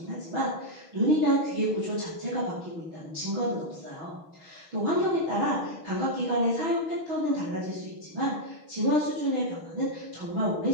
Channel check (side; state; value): left; late; 6.3 ms